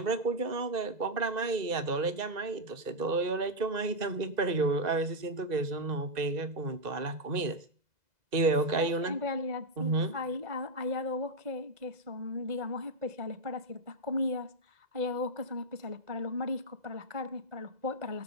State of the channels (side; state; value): left; late; 2.0 ms